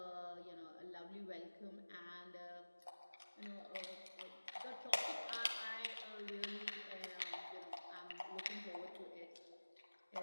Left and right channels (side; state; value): both; inverted; correlation -1.00